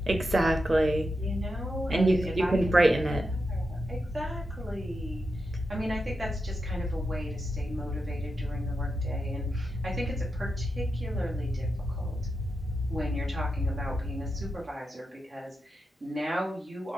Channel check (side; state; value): both; normal; correlation 0.88